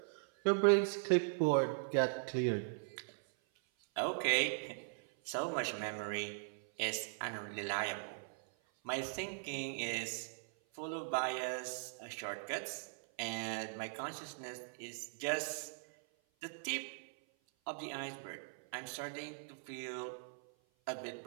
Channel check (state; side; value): silent; left; 51 dB below the other